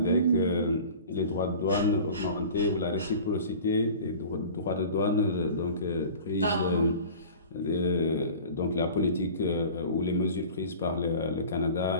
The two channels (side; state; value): both; inverted; correlation -0.41